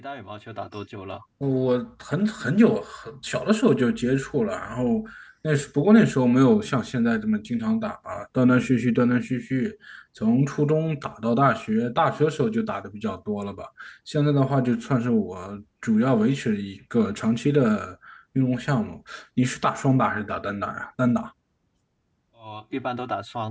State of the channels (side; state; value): both; identical; correlation 1.00